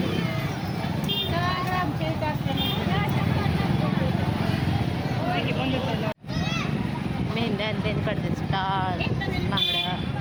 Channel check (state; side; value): identical; both; correlation 1.00